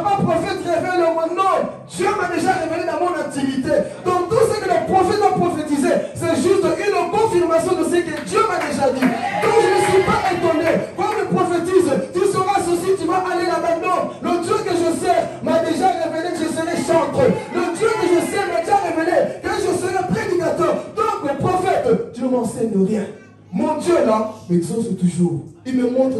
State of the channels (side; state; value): both; identical; correlation 1.00